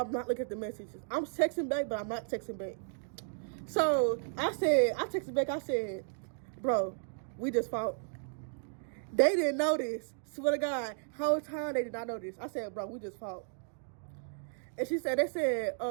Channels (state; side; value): silent; left; digital silence